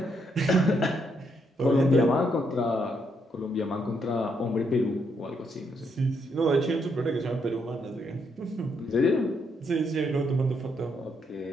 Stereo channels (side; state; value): both; normal; correlation 0.76